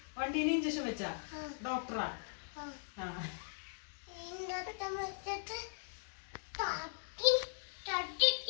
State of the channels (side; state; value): right; silent; digital silence